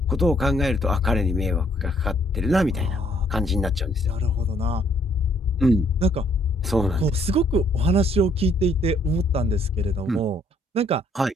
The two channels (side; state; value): both; normal; correlation 0.66